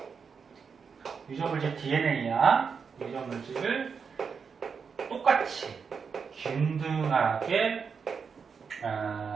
DNA야. 유전물질을 똑같이 균등하게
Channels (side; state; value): left; quieter; 5.9 dB